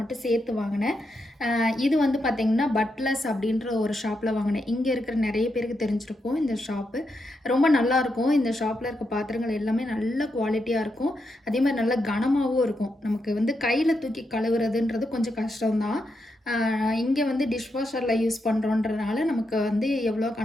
மட்டும் சேர்த்து வாங்கினேன். இது வந்து பார்த்திங்கன்னா பட்லஸ் அப்படின்ற ஒரு ஷாப்பில் வாங்கினேன். இங்கே இருக்கிற நிறைய பேருக்கு தெரிஞ்சிருக்கும் இந்த ஷாப்பு. ரொம்ப நல்லாயிருக்கும். இந்த ஷாப்பில் இருக்க பாத்திரங்கள் எல்லாமே நல்ல குவாலிட்டியாக இருக்கும். அதே மாதிரி நல்ல கனமாகவும் இருக்கும். நமக்கு வந்து கையில் தூக்கி கழுவுறதுன்றது கொஞ்சம் கஷ்டம்தான். இங்கே வந்து டிஷ்வாஷரில் யூஸ் பண்ணுறோன்றதுனால நமக்கு வந்து எவ்வளோ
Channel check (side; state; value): both; normal; correlation 0.83